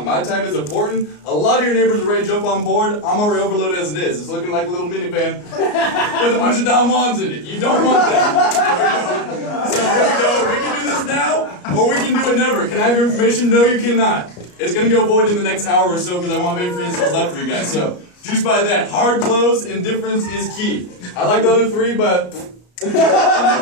My time is important. A lot of your neighbors are ready to jump on board. I'm already overloaded as it is. It's looking like a little minivan with a bunch of Don Juans in it. You don't want that. So here we go. We can do this now, or we can do it never. Can I have your information? No, you cannot. It's going to go void in the next hour or so because I won't have any free installs left for you guys. So, juice by that. Hard close, indifference is key. I like the other three, but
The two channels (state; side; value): late; right; 34 ms